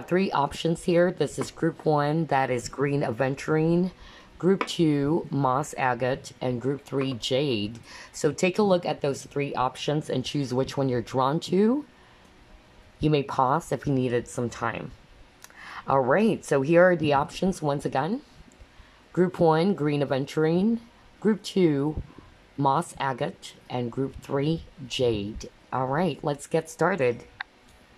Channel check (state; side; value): identical; both; correlation 1.00